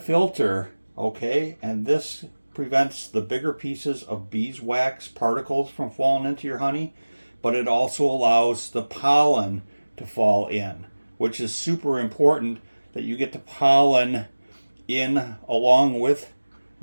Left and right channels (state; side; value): inverted; both; correlation -1.00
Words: okay? And this prevents the bigger pieces of beeswax particles from falling into your honey, but it also allows the pollen to fall in, which is super important, that you get the pollen in along with